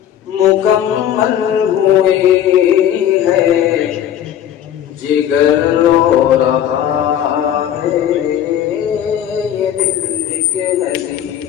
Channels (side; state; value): right; quieter; 10.4 dB